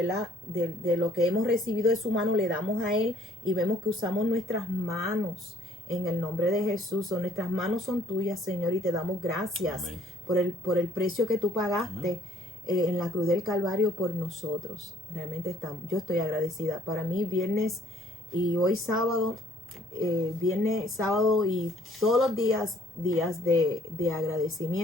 De lo que hemos recibido de su mano, le damos a Él y vemos que usamos nuestras manos en el nombre de Jesús. Nuestras manos son tuyas, Señor, y te damos gracias por el precio que tú pagaste en la cruz del Calvario por nosotros. Realmente yo estoy agradecida. Para mí, viernes y hoy sábado, viernes, sábado y todos los días de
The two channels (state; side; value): normal; both; correlation 0.61